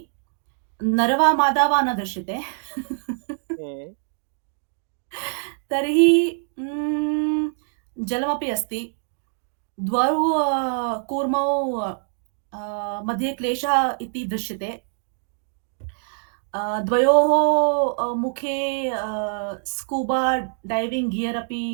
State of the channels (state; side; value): silent; left; digital silence